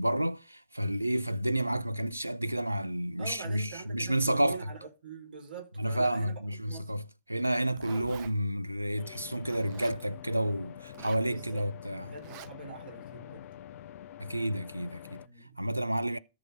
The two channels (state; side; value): inverted; both; correlation -0.92